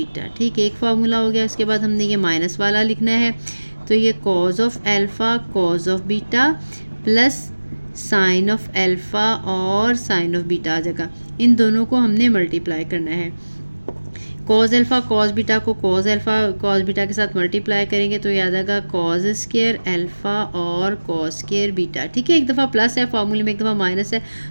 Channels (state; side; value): inverted; both; correlation -1.00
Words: ठीक है, एक फार्मूला हो गया। उसके बाद हमने ये माइनस वाला लिखना है, तो ये cos of alpha cos of beta plus sine of alpha और साइन ऑफ बीटा आ जाएगा। इन दोनों को हमने मल्टीप्लाई करना है। कॉज अल्फ़ा कॉज बीटा को कॉज अल्फ़ा कॉज बीटा के साथ मल्टीप्लाई करेंगे तो ये आ जाएगा कॉज स्क्वायर अल्फ़ा और कॉज स्क्वायर बीटा। ठीक है, एक दफ़ा प्लस है फार्मूले में, एक दफ़ा माइनस है,